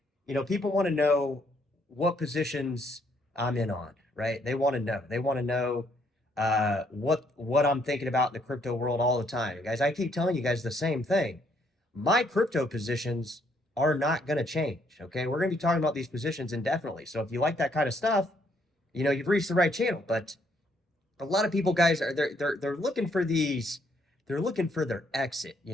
people want to know what positions I'm in on, right? They want to know. They want to know what I'm thinking about in the crypto world all the time. Guys, I keep telling you guys the same thing. My crypto positions are not going to change. Okay, we're going to be talking about these positions indefinitely. So if you like that kind of stuff, you've reached the right channel. But a lot of people, guys, are they're looking for these. They're looking for their exit.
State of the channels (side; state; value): both; normal; correlation 0.70